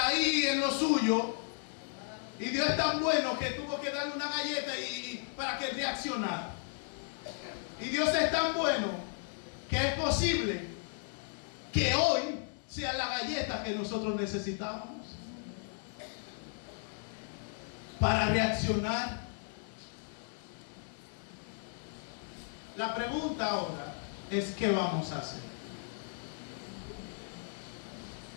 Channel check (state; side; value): silent; right; 54 dB below the other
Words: en lo suyo, y Dios es tan bueno que tuvo que darle una galleta para que reaccionara. Y Dios es tan bueno que es posible que hoy sea la galleta que nosotros necesitamos para reaccionar. La pregunta ahora es: ¿qué vamos a hacer?